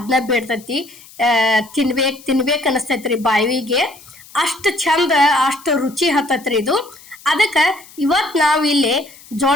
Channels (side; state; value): left; noise; hiss, 22 dB below the sound